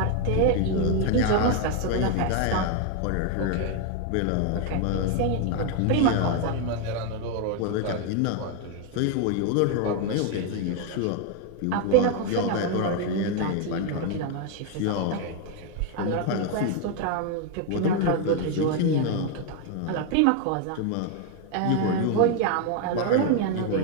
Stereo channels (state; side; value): different; both; correlation 0.01